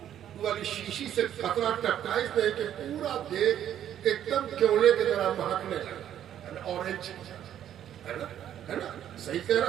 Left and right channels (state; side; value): quieter; left; 10.6 dB